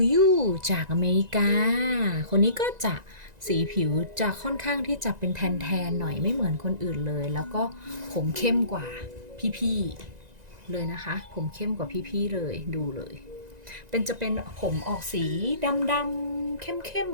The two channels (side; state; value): left; late; 1.9 ms